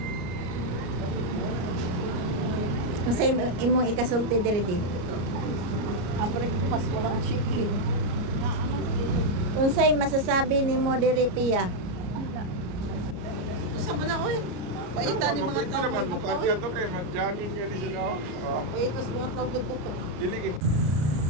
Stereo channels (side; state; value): left; late; 33 ms